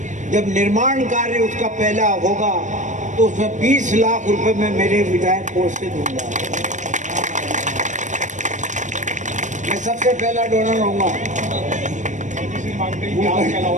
जब निर्माण कार्य उसका पहला होगा तो उसमें 20 लाख रुपए में मेरे विधायक कोष से दूंगा। मैं सबसे पहला डोनर होऊंगा।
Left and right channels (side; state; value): left; late; 0.35 ms